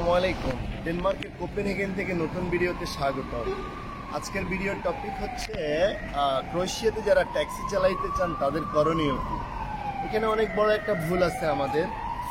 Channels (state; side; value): identical; both; correlation 1.00